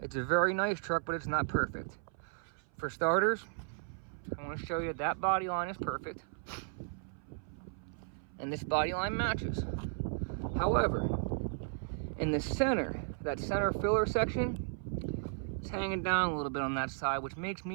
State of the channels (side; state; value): left; silent; 54 dB below the other